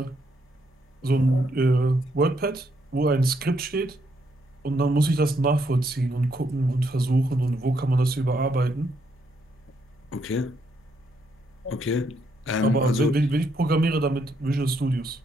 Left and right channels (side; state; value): both; normal; correlation 0.75